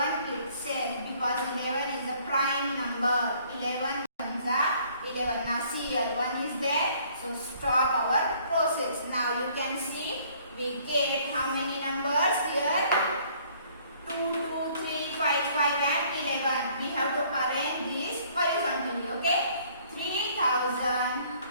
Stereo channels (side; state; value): both; inverted; correlation -0.60